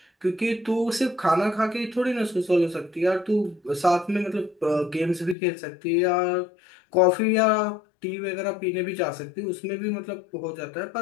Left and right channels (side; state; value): right; drops out; at 5.4 s